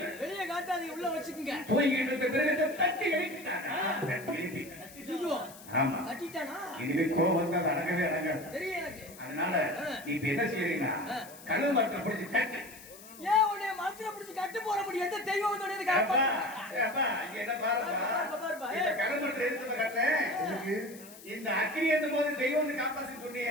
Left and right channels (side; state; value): left; noise; hiss, 18 dB below the sound